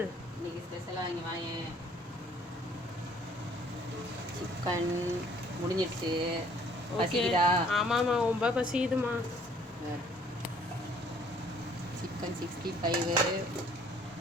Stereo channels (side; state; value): both; normal; correlation 0.59